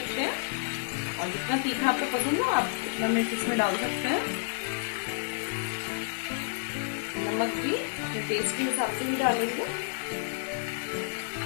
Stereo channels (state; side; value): silent; right; 58 dB below the other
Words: हैं। और जितना तीखा आपको पसंद हो आप उतना मिर्च इसमें डाल सकते हैं। नमक भी अपने टेस्ट के हिसाब से भी डालेंगे।